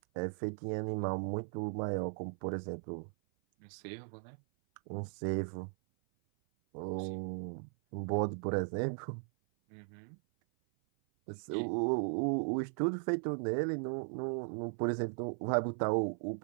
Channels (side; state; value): left; silent; 53 dB below the other